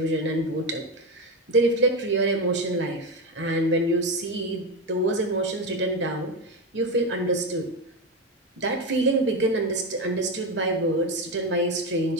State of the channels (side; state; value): both; normal; correlation 0.15